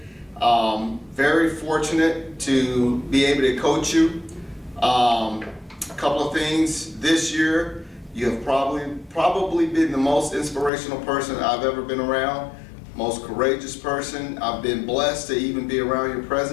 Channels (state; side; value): drops out; right; at 10.7 s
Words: Very fortunate to be able to coach you. A couple of things this year, you have probably been the most inspirational person I've ever been around, most courageous person. I've been blessed to even be around your